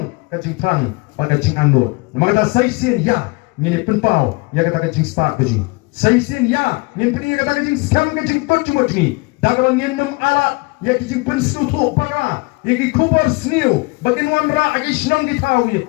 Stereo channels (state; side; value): quieter; right; 26.7 dB